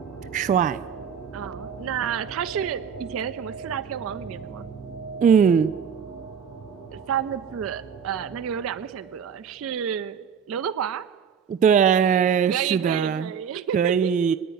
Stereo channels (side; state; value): left; quieter; 7.2 dB